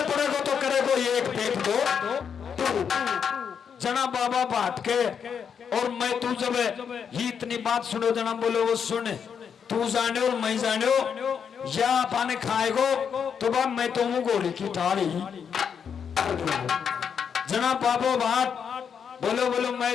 पड़ेगो तो करेगो एक पेट दो जना बाबा भाट के और मैं तू जब ही इतनी बात सुनो जना बोलो वो सुन तू जाने और मैं जाने या पाने खाएगो तो बाप मैं तो हूँ गोली की थाली जना बाबो भाट बोलो बोलो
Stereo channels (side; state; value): right; quieter; 7.2 dB